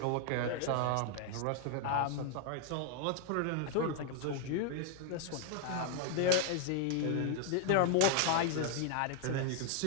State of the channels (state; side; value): different; both; correlation 0.00